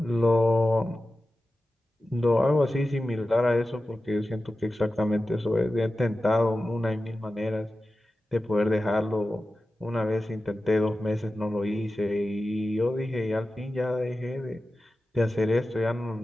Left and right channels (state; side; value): normal; both; correlation 0.94